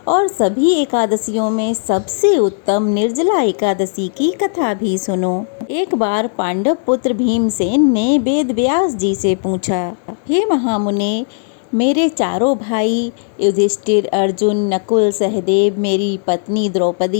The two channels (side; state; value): right; silent; digital silence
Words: और सभी एकादशियों में सबसे उत्तम निर्जला एकादशी की कथा भी सुनो। एक बार पांडव पुत्र भीमसेन ने वेद व्यास जी से पूछा, हे महामुने, मेरे चारों भाई युधिष्ठिर, अर्जुन, नकुल, सहदेव, मेरी पत्नी